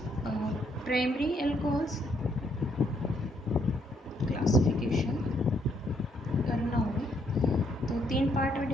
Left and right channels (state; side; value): normal; both; correlation 0.71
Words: प्राइमरी अल्कोहल्स क्लासिफिकेशन करना हो तो तीन पार्ट में